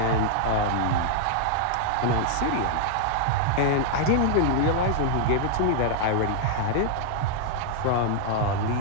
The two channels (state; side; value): different; both; correlation -0.01